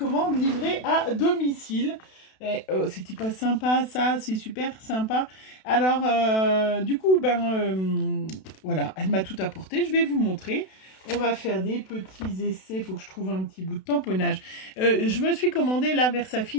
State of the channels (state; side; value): late; right; 32 ms